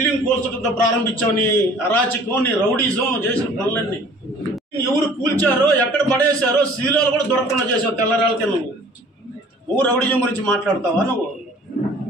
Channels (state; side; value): normal; both; correlation 0.51